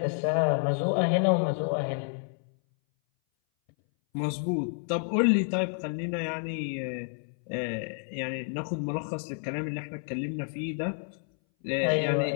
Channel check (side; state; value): right; silent; 58 dB below the other